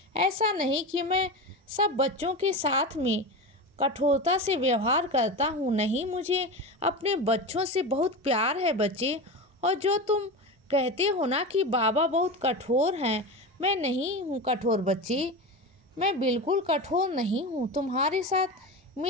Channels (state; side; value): normal; both; correlation 0.24